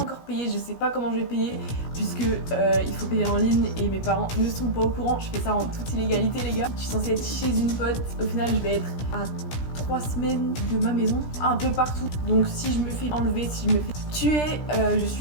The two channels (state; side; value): late; right; 17 ms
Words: payé, je sais pas comment je vais payer puisque il faut payer en ligne et mes parents ne sont pas au courant. Je fais ça en toute illégalité les gars. Je suis censée être chez une pote, au final je vais être à 3 semaines de ma maison, un peu partout. Donc si je me fais enlever, si je me fais tuer, je